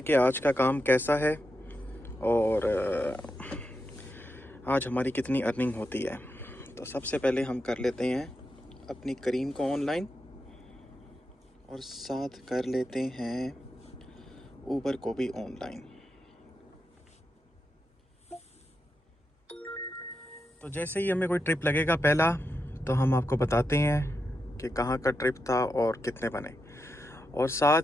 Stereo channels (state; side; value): normal; both; correlation 0.87